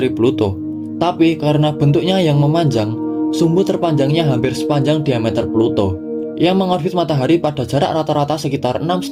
Pluto, tapi karena bentuknya yang memanjang, sumbu terpanjangnya hampir sepanjang diameter Pluto. Ia mengorbit matahari pada jarak rata-rata sekitar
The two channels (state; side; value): identical; both; correlation 1.00